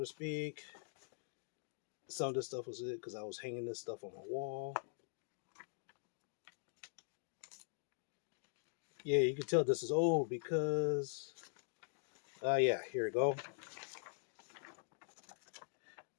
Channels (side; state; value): right; silent; digital silence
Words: speak. Some of this stuff was it because I was hanging this stuff on my wall. Yeah, you can tell this is old because, yeah, here we go.